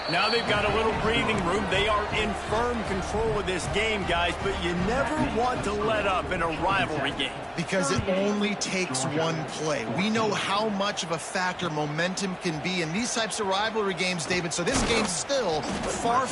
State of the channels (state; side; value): identical; both; correlation 1.00